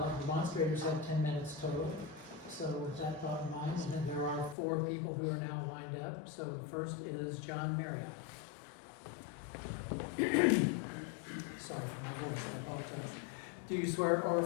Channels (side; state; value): right; drops out; at 4.5 s